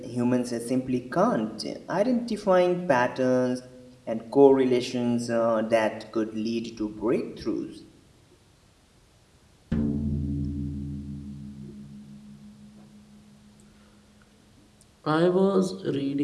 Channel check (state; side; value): identical; both; correlation 1.00